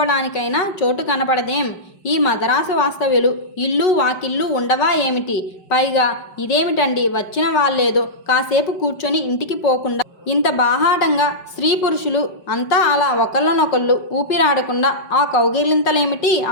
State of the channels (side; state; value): right; late; 5.2 ms